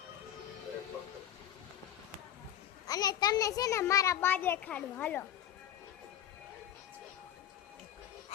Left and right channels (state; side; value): quieter; right; 11.0 dB